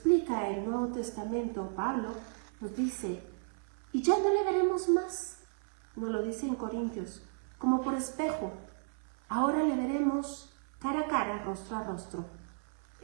el Nuevo Testamento, Pablo nos dice, y ya no le veremos más, nos lo dice en Corintios, como por espejo. Ahora le veremos cara a cara, rostro a rostro.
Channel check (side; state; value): left; silent; 55 dB below the other